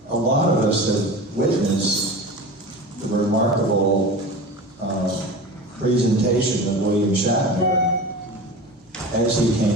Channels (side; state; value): both; normal; correlation 0.32